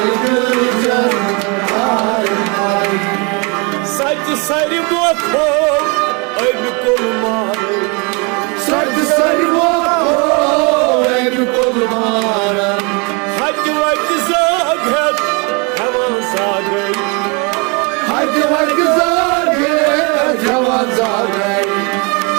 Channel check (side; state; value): left; quieter; 31.6 dB